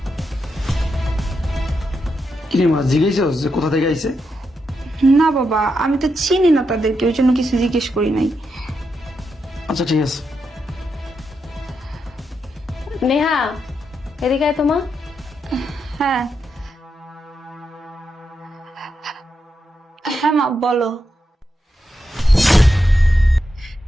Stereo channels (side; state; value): both; normal; correlation 0.84